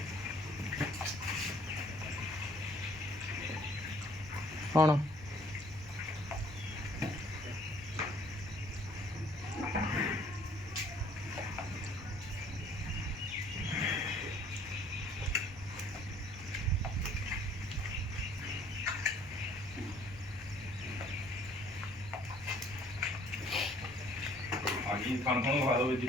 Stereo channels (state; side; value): normal; both; correlation 0.59